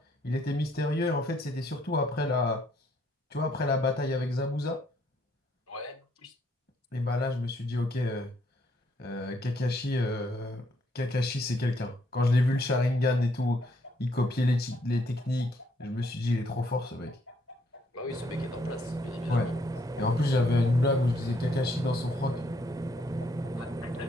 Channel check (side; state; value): both; normal; correlation 0.70